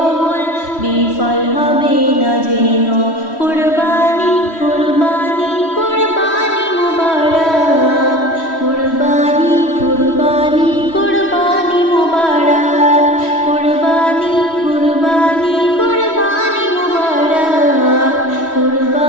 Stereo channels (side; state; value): right; late; 3.1 ms